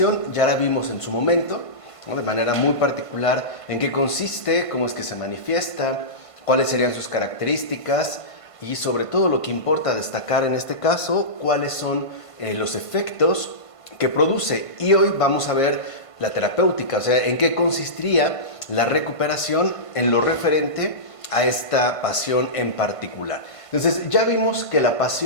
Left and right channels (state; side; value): late; right; 1.5 ms